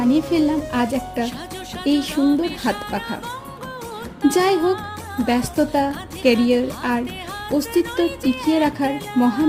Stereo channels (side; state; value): both; identical; correlation 1.00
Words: ফেললাম আজ একটা এই সুন্দর হাত পাখা। যাই হোক, ব্যস্ততা, ক্যারিয়ার আর অস্তিত্ব টিকিয়ে রাখার